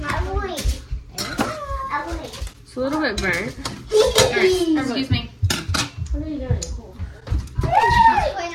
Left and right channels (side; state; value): both; identical; correlation 1.00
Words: not wait. It's a little bit burnt. Alright, excuse me. What are you doing? Clean